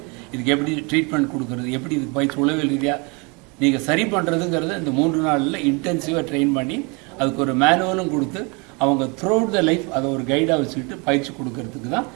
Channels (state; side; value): quieter; left; 30.5 dB